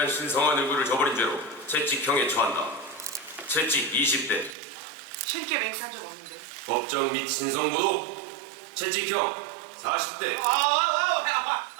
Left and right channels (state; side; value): drops out; left; at 4.5 s